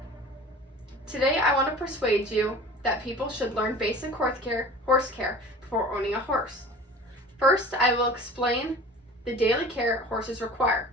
Today I want to persuade you that people should learn basic horse care before owning a horse. First, I will explain the daily care horses require.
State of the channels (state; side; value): normal; both; correlation 0.41